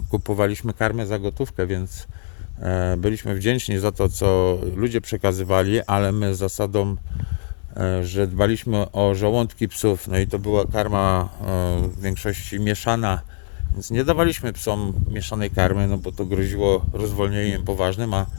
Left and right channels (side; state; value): right; silent; digital silence